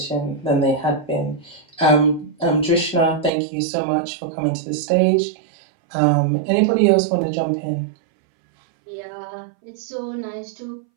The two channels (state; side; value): drops out; left; at 3.3 s